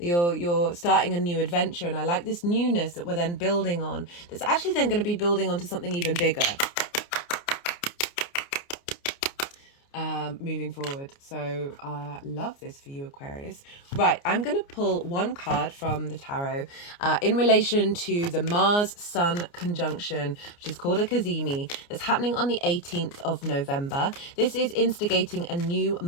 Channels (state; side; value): late; right; 29 ms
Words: starting a new adventure, and I like this newness that we're then building on. That's actually then going to be building onto something even bigger. Moving forward. So love this for you, Aquarius. Right, I'm going to pull one card from the tarot in relation to the Mars Sun conjunction, which is called a Cazimi, that's happening on the 18th of November. This is instigating a new